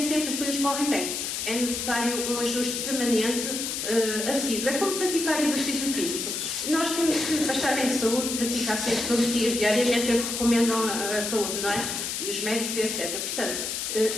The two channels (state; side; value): noise; left; hiss, 3 dB below the sound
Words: sempre as coisas correm bem. É necessário um ajuste permanente, assíduo. É como praticar exercício físico. Nós temos que, para estar em saúde, praticar sempre todos os dias, diariamente, é o que recomendam a saúde, não é? E os médicos, etc. Portanto,